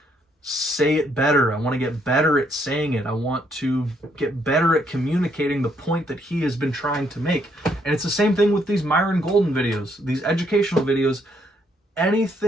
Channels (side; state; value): both; normal; correlation 0.71